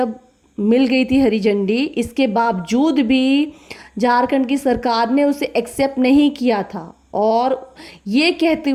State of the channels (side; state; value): both; identical; correlation 1.00